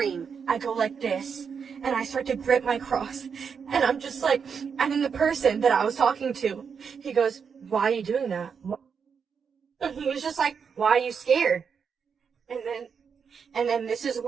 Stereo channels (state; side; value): quieter; left; 6.4 dB